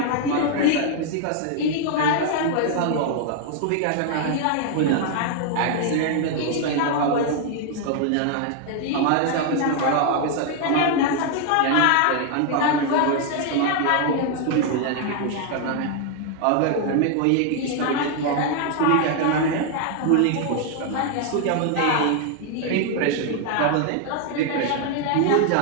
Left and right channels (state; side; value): different; both; correlation 0.00